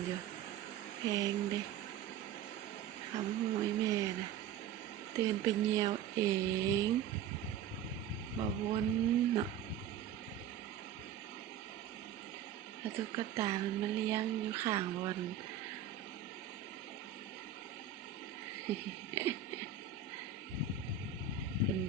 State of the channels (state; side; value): quieter; left; 8.7 dB